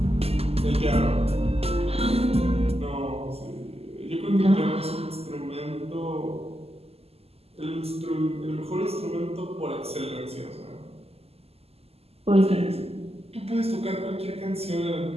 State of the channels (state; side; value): late; left; 0.29 ms